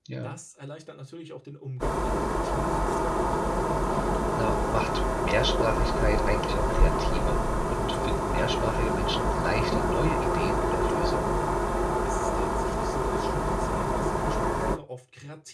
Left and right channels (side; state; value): both; identical; correlation 1.00